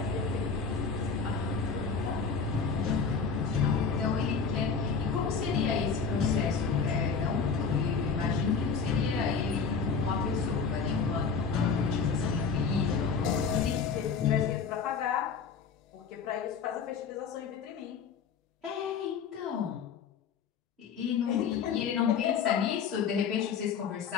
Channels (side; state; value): right; quieter; 5.7 dB